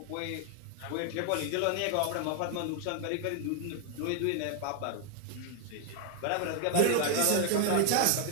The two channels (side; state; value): both; different; correlation 0.00